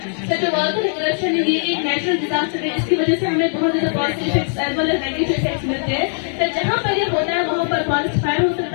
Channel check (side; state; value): right; silent; 66 dB below the other